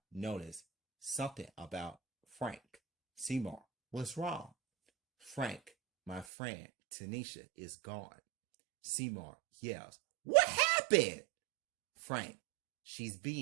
noticed something about Frank. Seymour, what's wrong? Frank, my friend Tanisha is gone. Seymour yells, what happened? Frank, she's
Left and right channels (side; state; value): left; drops out; at 6.2 s